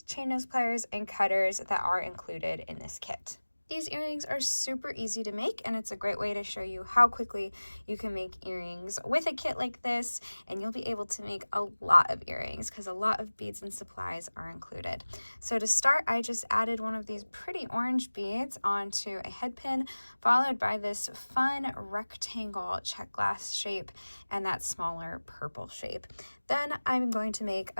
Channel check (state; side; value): inverted; both; correlation -1.00